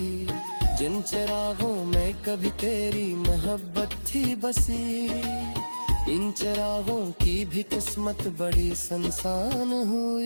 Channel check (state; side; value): inverted; both; correlation -1.00